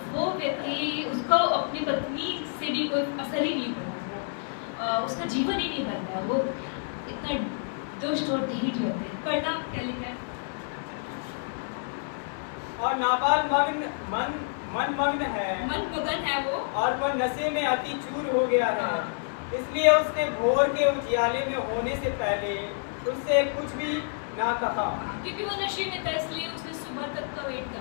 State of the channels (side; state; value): right; silent; digital silence